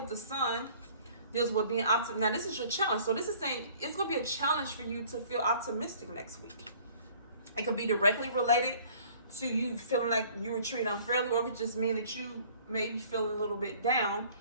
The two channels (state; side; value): inverted; both; correlation -0.54